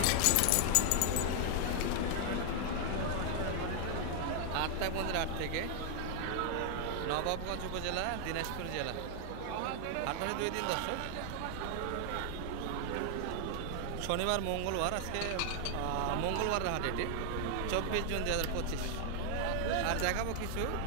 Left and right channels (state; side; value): different; both; correlation 0.00